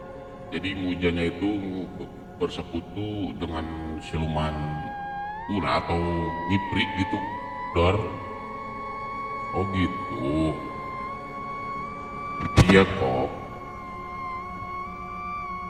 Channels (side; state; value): both; identical; correlation 1.00